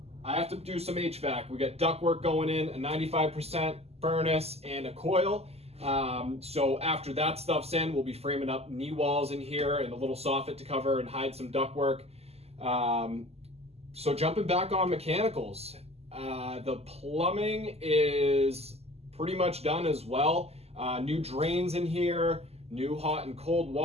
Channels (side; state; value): left; late; 0.29 ms